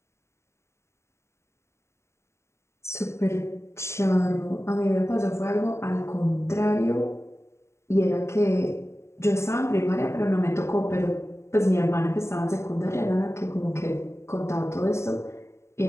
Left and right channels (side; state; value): right; late; 0.13 ms